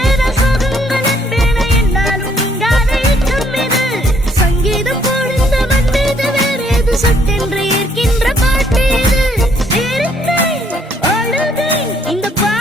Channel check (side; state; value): both; normal; correlation 0.66